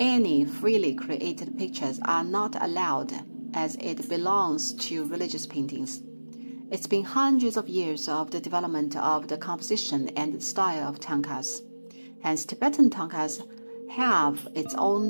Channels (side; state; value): both; inverted; correlation -1.00